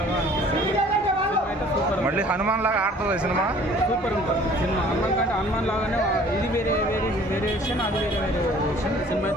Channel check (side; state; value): both; normal; correlation 0.52